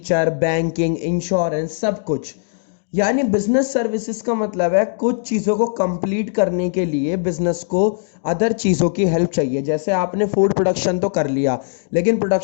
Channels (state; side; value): silent; right; digital silence